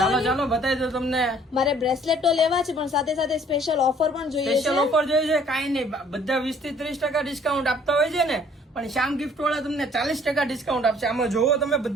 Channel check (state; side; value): normal; both; correlation 0.57